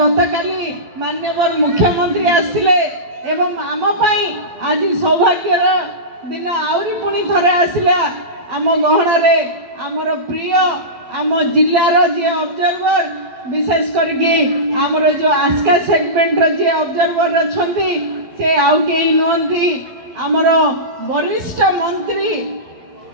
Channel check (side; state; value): left; late; 12 ms